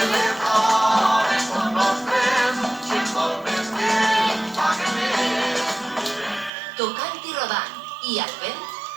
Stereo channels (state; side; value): drops out; left; at 6.5 s